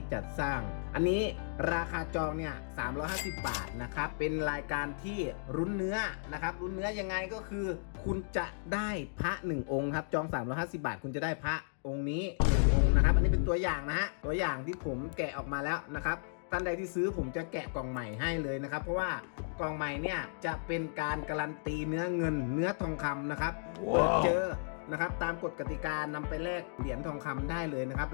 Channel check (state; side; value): silent; right; digital silence